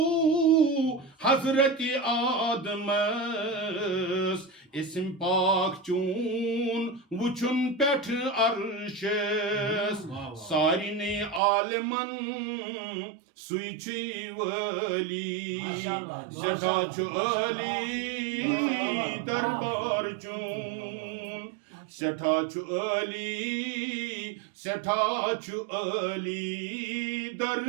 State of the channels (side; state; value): left; drops out; at 11.4 s